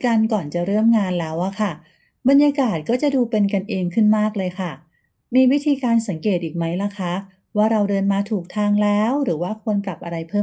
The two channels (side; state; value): both; identical; correlation 1.00